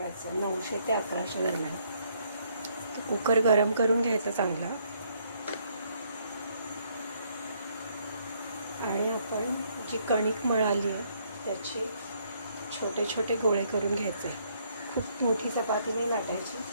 900 ते 1100 दरम्यान. तर कुकर गरम करून घ्यायचा चांगला आणि आपण जी कणिक मळाली आहे त्याचे छोटे छोटे गोळे करून घ्यायचे. खूप मोठी चपाती नाही लाटायची,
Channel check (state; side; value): inverted; both; correlation -0.69